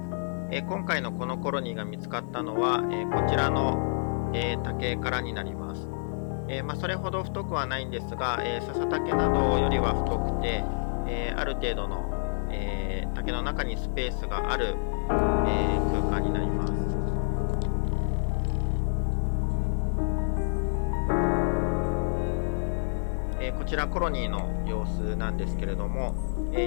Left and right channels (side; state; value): right; silent; 59 dB below the other